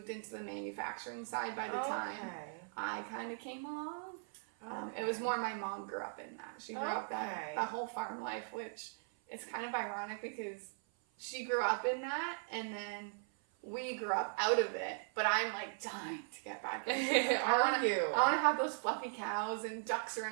into the manufacturing side by the time I kind of came along. It was more my mom grew up in that. She grew up that whole farm life, which is kind of ironic because she grew up in that and then we grew up out of it. But I'm like dying to get back into it. I want to have those fluffy cows and ducks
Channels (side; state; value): left; silent; 52 dB below the other